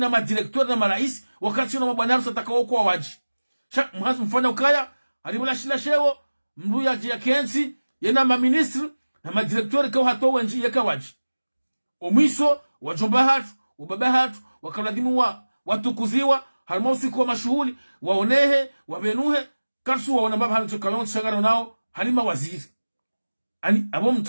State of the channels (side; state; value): both; inverted; correlation -1.00